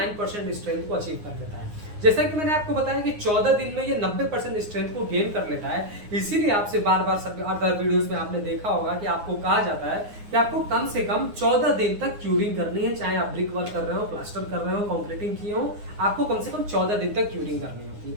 स्ट्रेंथ को अचीव कर लेता है। जैसा कि मैंने आपको बताया कि 14 दिन में ये 90% स्ट्रेंथ को गेन कर लेता है, इसीलिए आपसे बार बार सब अदर वीडियोस में आपने देखा होगा कि आपको कहा जाता है कि आपको कम से कम 14 दिन तक क्यूरिंग करनी है, चाहे आप ब्रिक वर्क कर रहे हो, प्लास्टर कर रहे हो, कंक्रीटिंग किए हो, आपको कम से कम 14 दिन तक क्यूरिंग करनी होती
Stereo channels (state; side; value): late; left; 9.7 ms